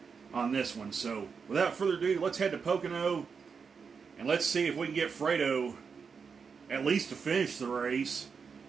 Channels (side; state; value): left; quieter; 5.8 dB